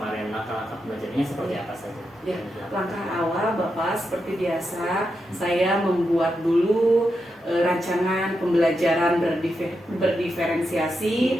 Langkah-langkah pembelajarannya seperti apa saja? Ya, langkah awal Bapak seperti biasa saya membuat dulu rancangan pembelajaran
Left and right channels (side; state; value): both; normal; correlation 0.86